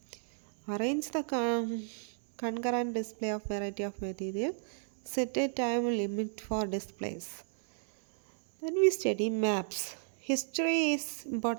Arrange the concurrent display of variety of material. Set a time limit for displays. Then we study maps. History is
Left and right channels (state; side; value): silent; left; digital silence